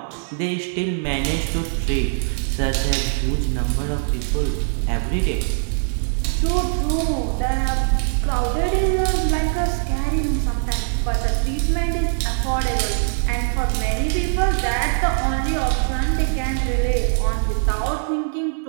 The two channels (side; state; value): left; silent; 59 dB below the other